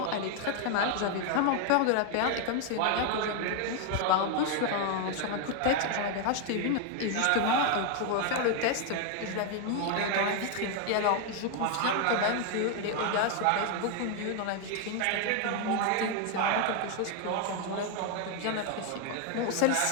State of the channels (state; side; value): different; both; correlation 0.01